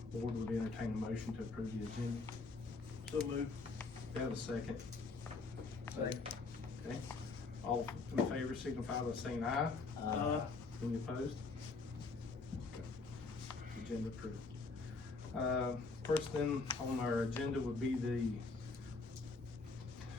board would entertain a motion to approve the agenda. So moved. We have a second. Second. Okay. All in favor signify by saying aye. Any opposed? Okay. Agenda approved. First thing on our agenda would be the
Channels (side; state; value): right; quieter; 4.0 dB